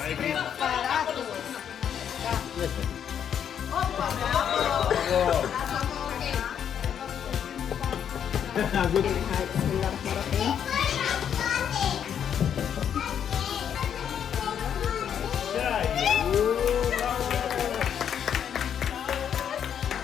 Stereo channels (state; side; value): quieter; right; 8.7 dB